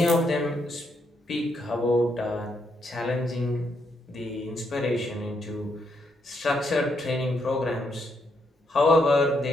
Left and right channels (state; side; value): normal; both; correlation 0.77